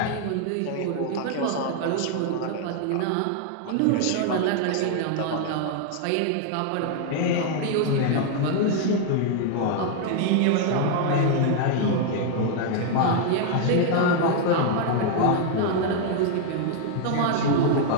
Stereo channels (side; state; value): both; different; correlation 0.00